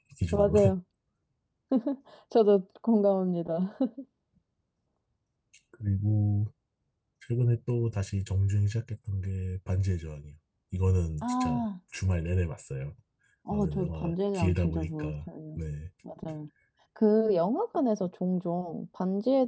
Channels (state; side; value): identical; both; correlation 1.00